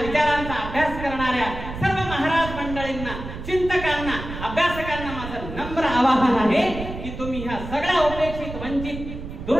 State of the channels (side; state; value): right; noise; rumble, 9 dB below the sound